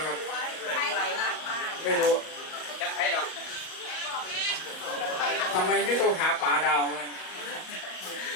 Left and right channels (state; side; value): late; right; 38 ms